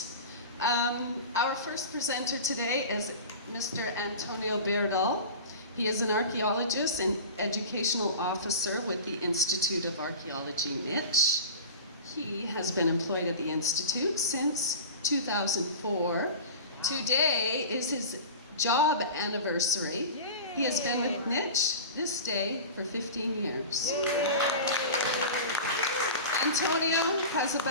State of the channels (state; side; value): inverted; both; correlation -0.32